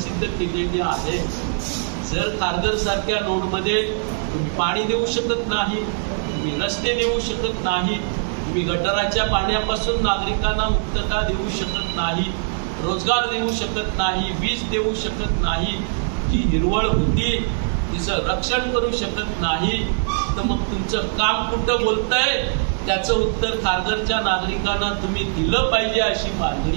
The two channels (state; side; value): silent; left; digital silence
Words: केलेली आहे. जर खारघर सारख्या नोडमध्ये तुम्ही पाणी देऊ शकत नाही, तुम्ही रस्ते देऊ शकत नाही, तुम्ही गटाराच्या पाण्यापासून नागरिकांना मुक्तता देऊ शकत नाही, रोजगार देऊ शकत नाही, वीज देऊ शकत नाही, जी हिरवळ होती तिचं रक्षण करू शकत नाही, तर मग तुमचं काम कुठं बोलतंय त्याचं उत्तर खारघरच्या नागरिकांना तुम्ही दिलं पाहिजे अशी